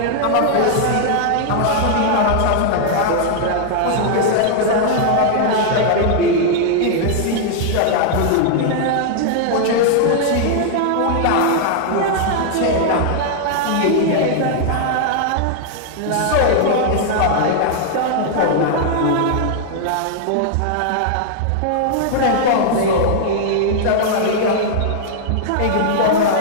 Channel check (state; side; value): different; both; correlation -0.01